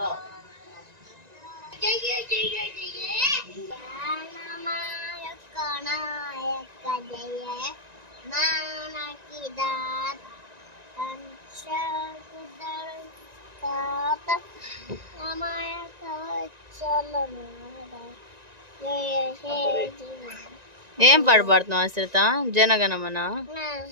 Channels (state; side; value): late; left; 1.9 ms